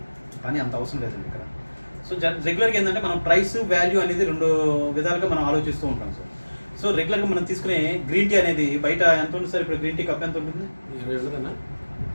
కానీ అంత అవసరం లేదండి ఇక్కడ. సో రెగ్యులర్గా ఏంటంటే మనం ప్రైస్ వాల్యూ అనేది రెండు విధాలుగా మనం ఆలోచిస్తూ ఉంటాం సార్. సో రెగ్యులర్గా మనం తీసుకునే గ్రీన్ టీ అనేది బయట ఎంత ఉంటుంది సార్? ఇప్పుడు గ్రీన్ టీ కప్ ఎంత ఉంటుంది? 20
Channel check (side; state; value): both; inverted; correlation -1.00